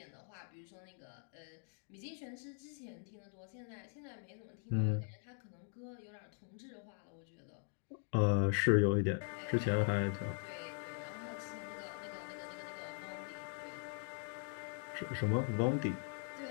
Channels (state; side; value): silent; right; 50 dB below the other